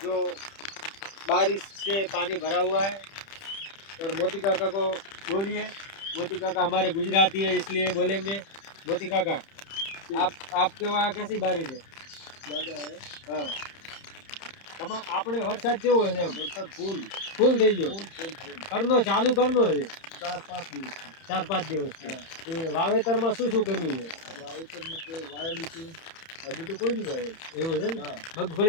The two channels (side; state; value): right; late; 30 ms